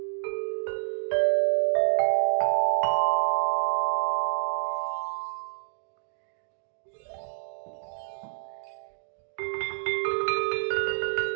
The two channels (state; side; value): silent; left; digital silence